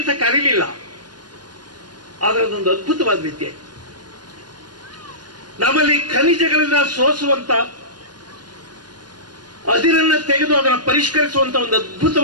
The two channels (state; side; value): late; left; 0.70 ms